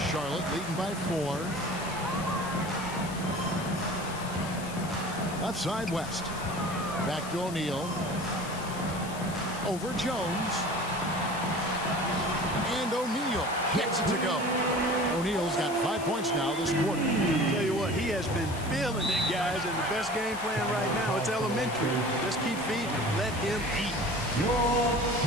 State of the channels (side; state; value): left; noise; hiss, 14 dB below the sound